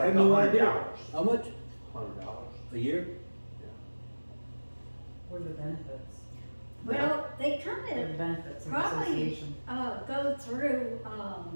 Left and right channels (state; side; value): inverted; both; correlation -1.00